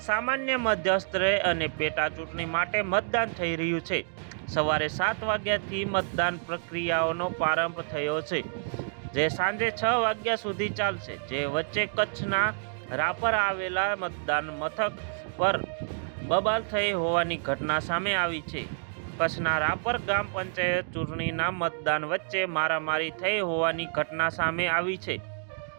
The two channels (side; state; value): left; silent; digital silence